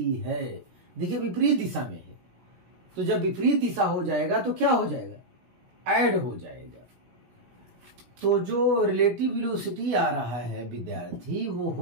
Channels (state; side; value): late; left; 16 ms